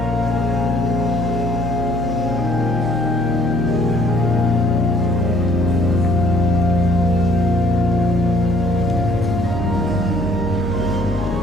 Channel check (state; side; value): normal; both; correlation 0.60